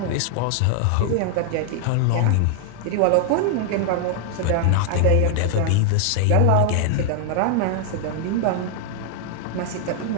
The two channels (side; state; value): both; different; correlation 0.00